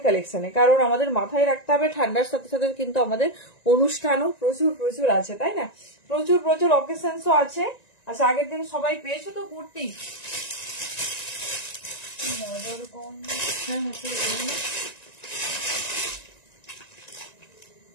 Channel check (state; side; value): late; right; 1.9 ms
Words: কালেকশনে, কারণ আমাদের মাথায় রাখতে হবে ঠান্ডার সাথে সাথে কিন্তু আমাদের অনুষ্ঠানও প্রচুর প্রচুর আছে, তাই না? প্রচুর প্রচুর অকেশনসও আছে। আচ্ছা আগের দিন সবাই পেয়েছো তো কুর্তি?